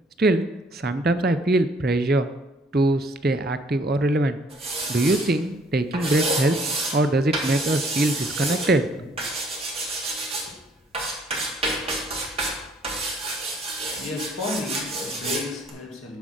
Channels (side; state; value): both; normal; correlation 0.62